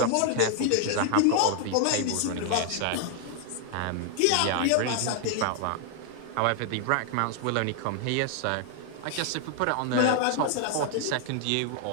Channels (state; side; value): different; both; correlation 0.00